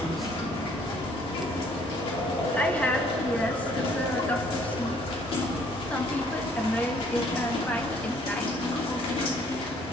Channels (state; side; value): normal; both; correlation 0.61